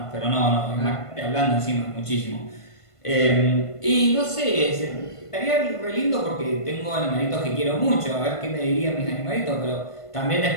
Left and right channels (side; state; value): right; late; 1.5 ms